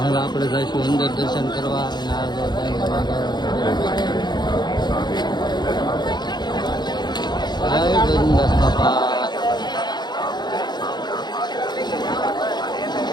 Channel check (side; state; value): right; late; 0.21 ms